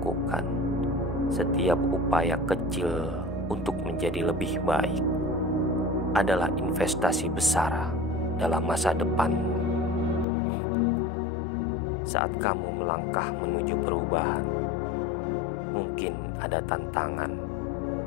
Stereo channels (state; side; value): drops out; right; at 10.2 s